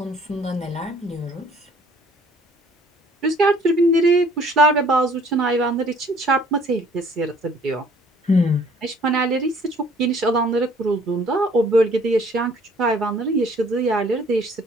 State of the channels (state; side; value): normal; both; correlation 0.57